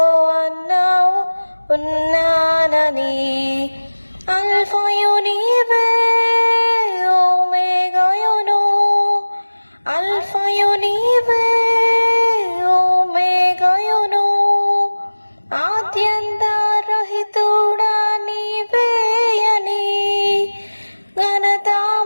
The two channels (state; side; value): inverted; both; correlation -1.00